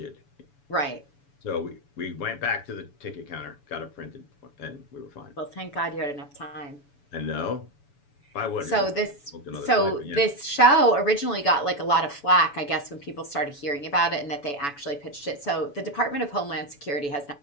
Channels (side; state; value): right; late; 7.0 ms